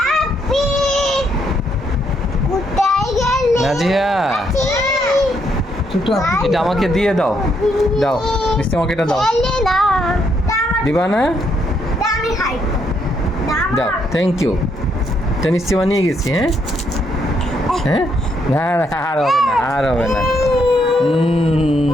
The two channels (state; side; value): normal; both; correlation 0.74